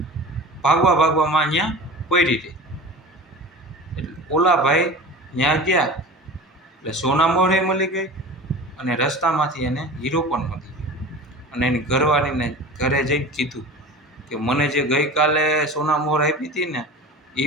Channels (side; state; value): both; normal; correlation 0.35